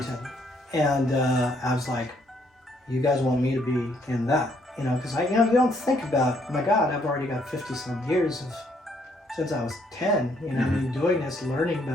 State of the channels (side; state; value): both; normal; correlation 0.69